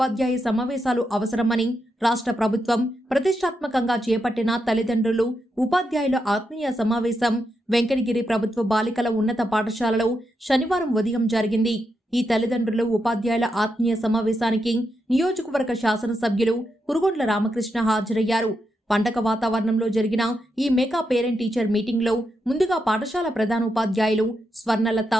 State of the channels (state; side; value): normal; both; correlation 0.84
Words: సమావేశాలు అవసరమని రాష్ట్ర ప్రభుత్వం ప్రతిష్టాత్మకంగా చేపట్టిన తల్లిదండ్రులు ఉపాధ్యాయుల ఆత్మీయ సమావేశం వెంకటగిరి ప్రభుత్వ బాలికల ఉన్నత పాఠశాలలో శనివారం ఉదయం జరిగింది. ఈ తల్లిదండ్రులు ఉపాధ్యాయుల ఆత్మీయ సమావేశానికి నియోజకవర్గ శాసనసభ్యులు కురుగొండ్ల రామకృష్ణ హాజరయ్యారు. పండగ వాతావరణంలో జరిగిన ఈ మెగా పేరెంట్ టీచర్ మీటింగ్ లో ముందుగా పాఠశాల ప్రధానోపాధ్యాయులు స్వర్ణలత